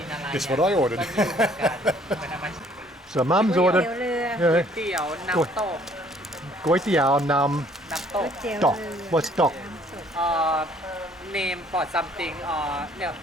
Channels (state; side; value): normal; both; correlation 0.60